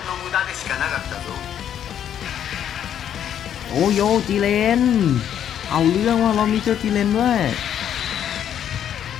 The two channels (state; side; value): quieter; right; 9.7 dB